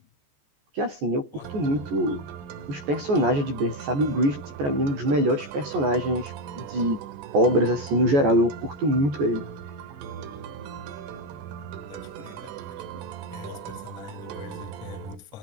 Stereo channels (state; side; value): late; left; 14 ms